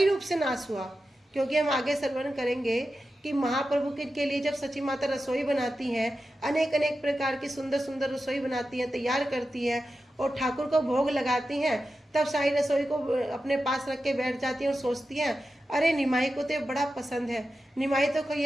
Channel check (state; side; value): normal; both; correlation 0.92